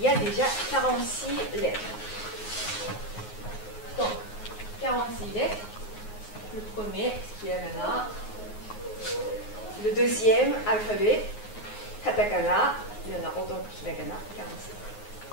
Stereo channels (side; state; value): right; late; 9.5 ms